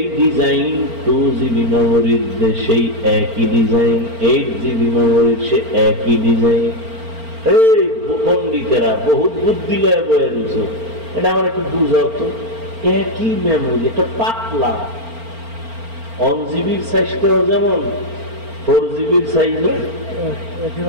ডিজাইন, 2 GB মেমোরির সেই একই ডিজাইন, 8 GB মেমোরির সে একই ডিজাইন। এই পণ্ডিতেরা বহুত বুদ্ধি লয়ে বয়ে রয়েছে, এটা আমার একটু বুঝাও তো। একই মেমোরি, এটা পাতলা। 1 GB সাইজটাও যেমন 4 GB সাইজ,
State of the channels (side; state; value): left; late; 4.4 ms